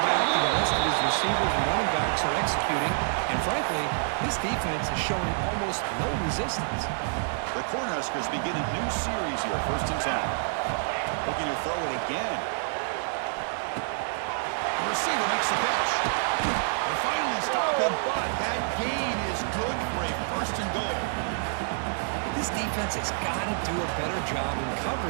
and the rest of his receivers and running backs are executing. And frankly, this defense is showing almost no resistance. The Cornhuskers begin a new series here, 1st and 10. Looking to throw it again. The receiver makes the catch. They finally stop him, but that gain is good for a 1st and goal. This defense has got to do a better job in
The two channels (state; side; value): silent; left; 60 dB below the other